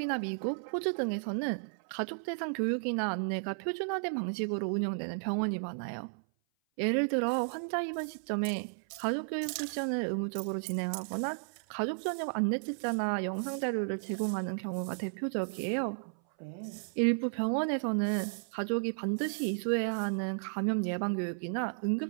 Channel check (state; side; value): silent; left; 55 dB below the other